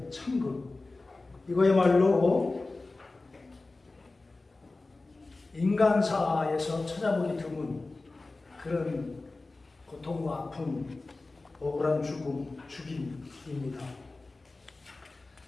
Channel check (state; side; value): quieter; right; 3.3 dB